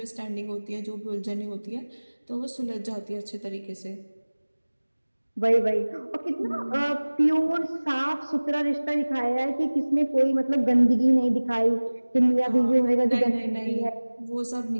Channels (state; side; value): inverted; both; correlation -1.00